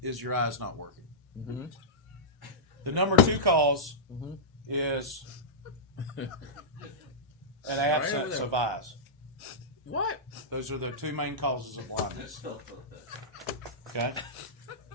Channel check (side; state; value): both; normal; correlation -0.14